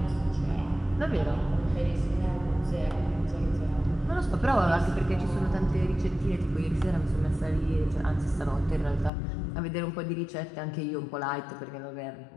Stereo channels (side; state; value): right; drops out; at 9.1 s